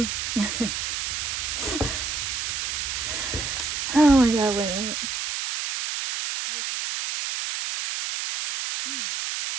my God, wait a minute. Okay.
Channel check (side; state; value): right; noise; hiss, 2 dB below the sound